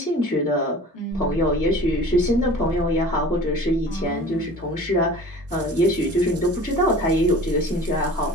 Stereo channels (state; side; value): normal; both; correlation 0.42